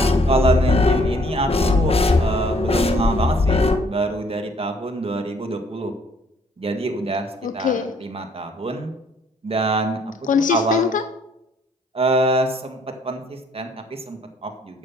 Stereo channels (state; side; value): normal; both; correlation 0.63